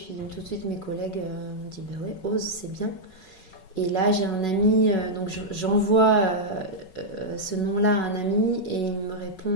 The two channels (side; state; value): right; late; 5.3 ms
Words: tout de suite, mes collègues m'ont dit bah ouais, ose, c'est bien. Et là, j'ai un ami, donc j'envoie ce nom-là à un ami, et il me